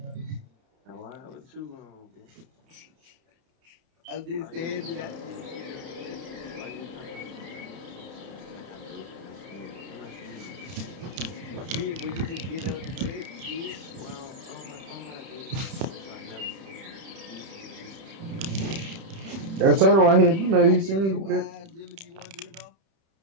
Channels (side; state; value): left; late; 31 ms